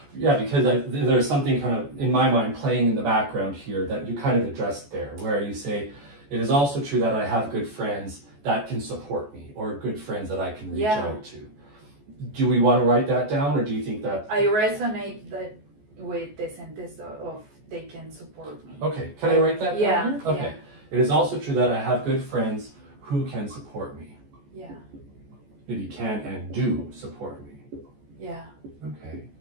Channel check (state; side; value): late; left; 14 ms